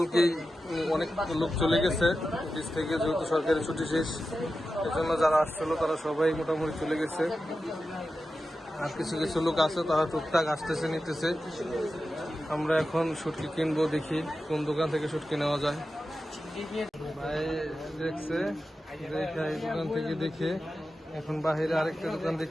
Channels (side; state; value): both; normal; correlation 0.92